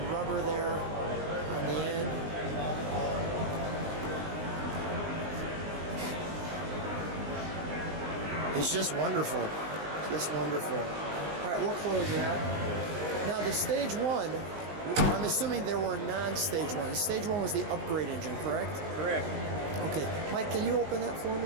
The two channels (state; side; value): late; left; 19 ms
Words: rubber there on the end. It's just wonderful. Just wonderful. All right, we'll close that. Now the Stage 1, I'm assuming there were non-Stage 1. Stage 1 was the upgrade engine, correct? Correct. Okay. Mike, can you open that for